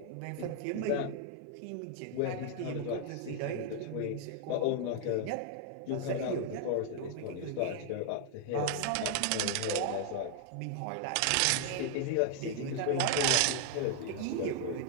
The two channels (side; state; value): both; different; correlation 0.00